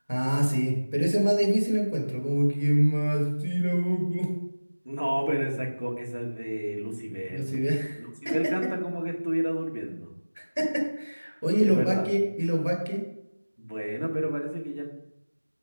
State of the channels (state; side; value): inverted; both; correlation -1.00